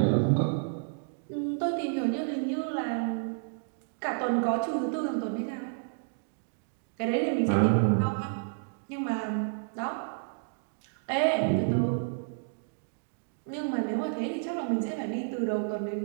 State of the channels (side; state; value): left; silent; digital silence